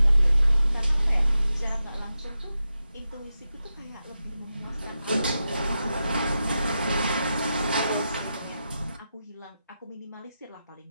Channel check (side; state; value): both; inverted; correlation -0.90